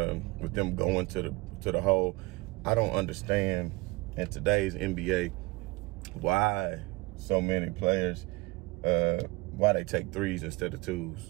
with them going to the hole. I don't understand in today's NBA why so many players, why they take 3s instead of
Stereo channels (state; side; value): quieter; left; 23.8 dB